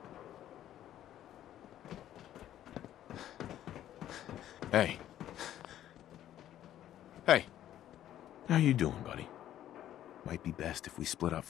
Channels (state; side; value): quieter; right; 12.0 dB